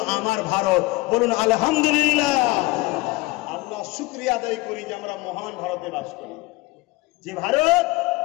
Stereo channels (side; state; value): right; quieter; 21.8 dB